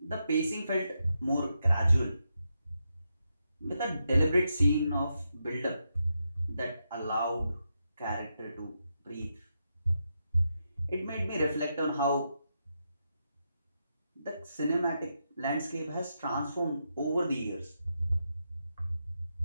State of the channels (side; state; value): both; inverted; correlation -0.84